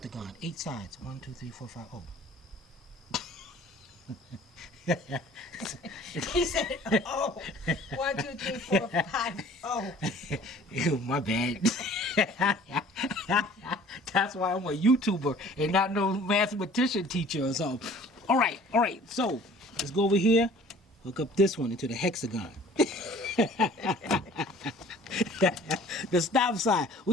8 sides. 1, 2, 3, 4, 5. Oh. He said, oh. 1, 2, 3, 4, 5. Oh. Ew, my bad. That's why I'm a YouTuber and not no mathematician teacher or something. All right. So let's go over here. Hook up this one into the hexagon. The stop sign.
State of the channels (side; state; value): both; normal; correlation 0.50